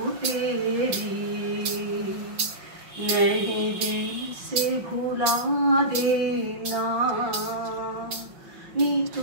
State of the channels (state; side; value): late; left; 5.6 ms